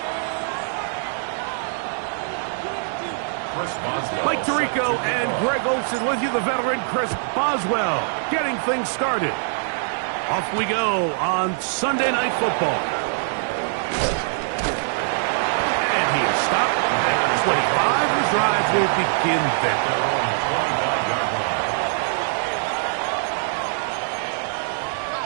Mike Tirico and Greg Olsen with you, the veteran Chris Boswell, getting things started. Off we go on Sunday Night Football. And he is stopped at 25. The drive will begin there.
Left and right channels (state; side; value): silent; left; digital silence